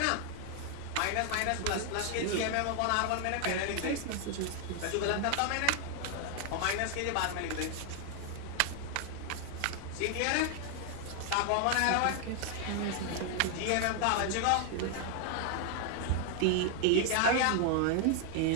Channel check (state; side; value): different; both; correlation 0.00